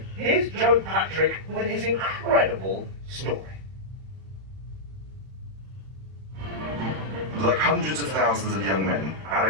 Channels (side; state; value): left; late; 31 ms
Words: here's Joe Patrick with his incredible story. Like hundreds of thousands of young men,